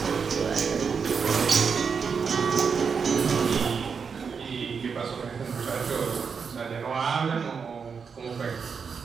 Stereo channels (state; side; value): quieter; left; 5.9 dB